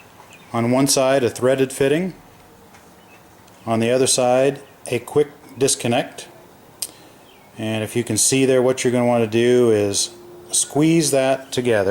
On one side a threaded fitting, on the other side a quick disconnect. And if you can see there, what you're going to want to do is squeeze that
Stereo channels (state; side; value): identical; both; correlation 1.00